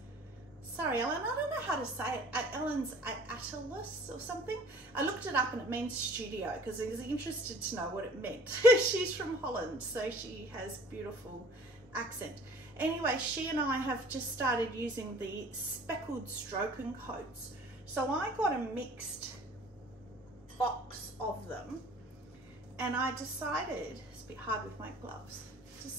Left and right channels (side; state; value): both; normal; correlation 0.49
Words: sorry Ellen, I don't know how to say it, Ellen's Atlas or something. I looked it up and it means studio because I was interested to know what it meant. She's from Holland, so she has beautiful accent. Anyway, she and I have just started using the speckled stroke and coats. So I got a mixed box of them, And I decided, it's a bit hard with my gloves,